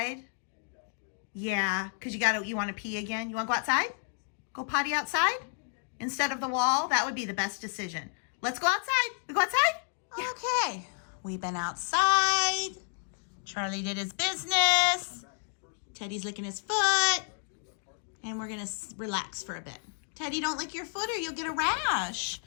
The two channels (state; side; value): silent; right; 57 dB below the other